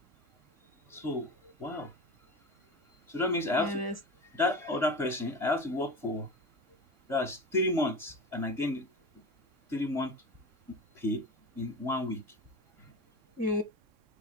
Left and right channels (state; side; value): late; left; 3.6 ms